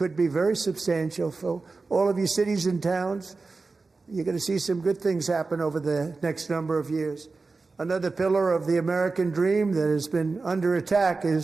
be very substantial for all of you cities and towns. You're going to see some good things happen over the next number of years. Another pillar of the American dream that has been under attack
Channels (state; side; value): quieter; left; 3.9 dB